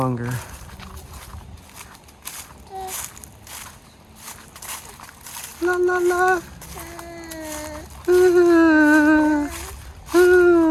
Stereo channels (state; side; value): identical; both; correlation 1.00